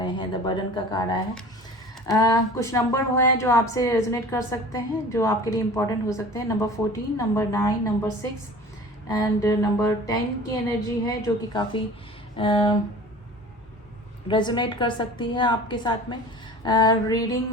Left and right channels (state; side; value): normal; both; correlation 0.42